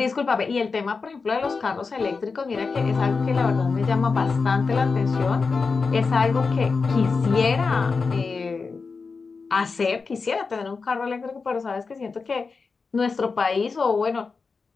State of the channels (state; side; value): quieter; right; 4.6 dB